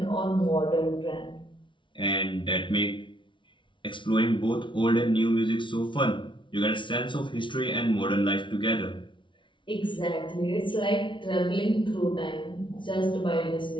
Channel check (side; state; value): right; late; 0.24 ms